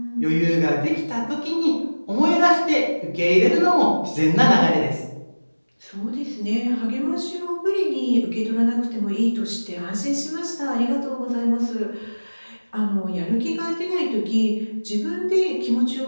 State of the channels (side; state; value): both; inverted; correlation -1.00